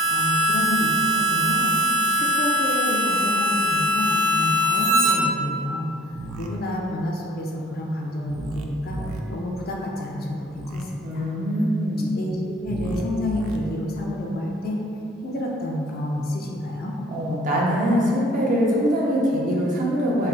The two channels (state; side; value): normal; both; correlation 0.52